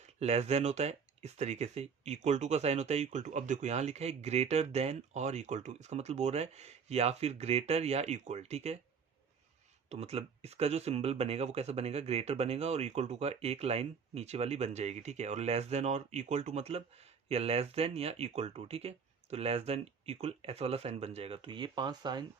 लेस देन होता है इस तरीके से, इक्वल टू का साइन होता है इक्वल टू। अब देखो यहाँ लिखा है ग्रेटर देन और इक्वल टू, इसका मतलब बोल रहा है या फिर ग्रेटर या इक्वल। ठीक है, तो मतलब इसका जो सिंबल बनेगा वो कैसा बनेगा, ग्रेटर बनेगा और इक्वल टू का एक लाइन नीचे वाली बन जाएगी। ठीक है, और लेस देन और इक्वल टू मतलब या लेस देन या इक्वल टू। ठीक है, तो लेस देन इक्वल ऐसा वाला साइन बन जाएगा। तो ये 5 साइन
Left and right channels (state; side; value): quieter; left; 6.2 dB